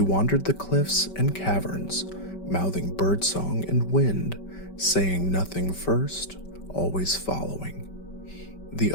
wandered the cliffs and caverns, mouthing birdsong and wind, saying nothing first, always following. The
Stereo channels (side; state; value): right; late; 5.2 ms